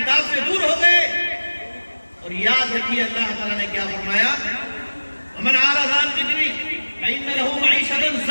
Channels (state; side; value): inverted; both; correlation -1.00